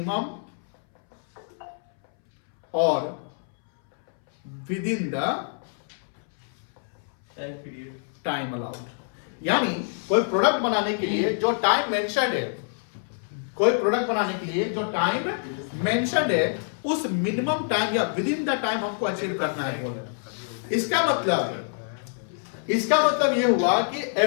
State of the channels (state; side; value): silent; right; 61 dB below the other